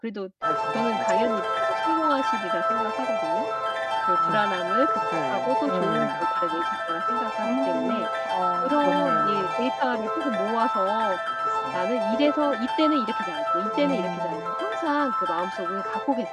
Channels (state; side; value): identical; both; correlation 1.00